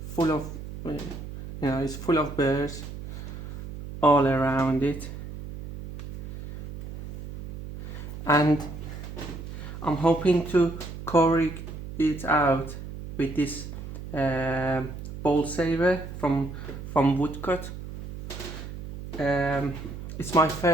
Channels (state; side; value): noise; right; hum, 10 dB below the sound